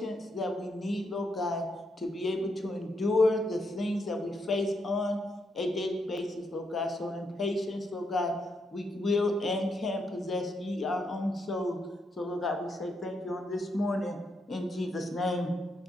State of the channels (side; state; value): both; normal; correlation 0.79